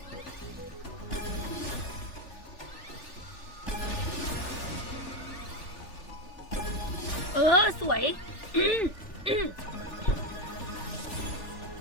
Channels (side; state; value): right; late; 3.4 ms